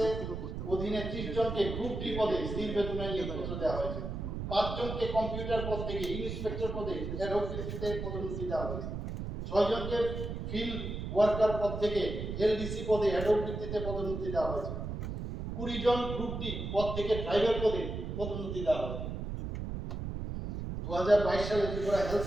অধীনে 30 জনকে গ্রুপ ডি পদে স্থির বেতনে নিয়োগপত্র দেওয়া হয়েছে। 5 জনকে কম্পিউটার পদ থেকে ইন্সপেক্টর পদে অ্যাডক ভিত্তিতে পদোন্নতি দেওয়া হয়েছে। 6 জনকে ফিল্ড ওয়ার্কার পদ থেকে এলডিসি পদে অ্যাডক ভিত্তিতে পদোন্নতি দেওয়া হয়েছে। 20 জন গ্রুপ ডি পদ থেকে ড্রাইভার পদে পদোন্নতি দেওয়া হয়েছে। 2022 সালে ত্রিপুরা হেলথ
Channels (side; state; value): right; noise; rumble, 5 dB below the sound